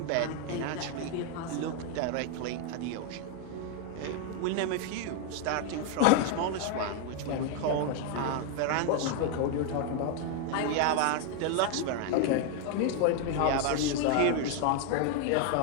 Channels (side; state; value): both; different; correlation 0.00